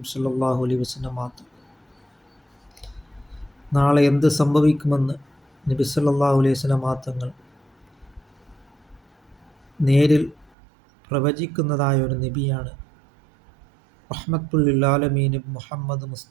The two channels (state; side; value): drops out; left; at 10.5 s